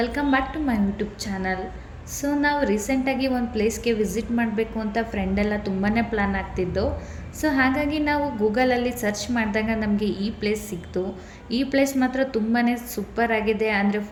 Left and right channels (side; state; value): both; identical; correlation 1.00